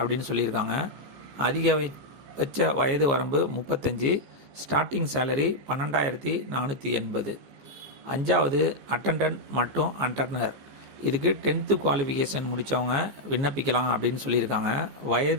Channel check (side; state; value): left; late; 15 ms